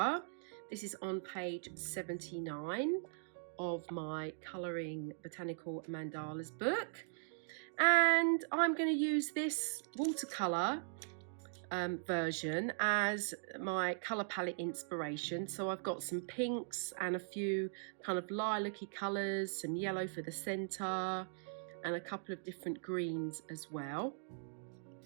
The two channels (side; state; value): left; silent; digital silence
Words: This is on page 79 of my Coloring Botanical Mandalas book, and I'm going to use this watercolour version as my colour palette inspiration. So I've got some pinks and a few kind of lilac-y colours, some yellow for the centre, and a couple of different greens as well.